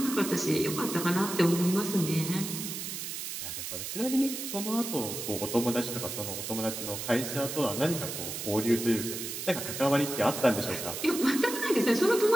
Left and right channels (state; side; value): noise; right; hiss, 6 dB below the sound